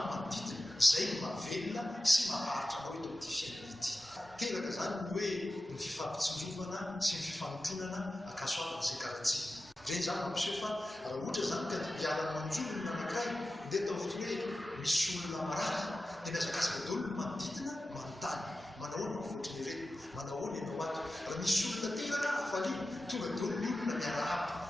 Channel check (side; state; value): both; normal; correlation 0.93